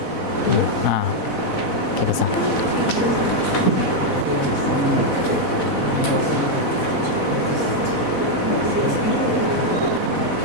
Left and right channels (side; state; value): right; late; 4.1 ms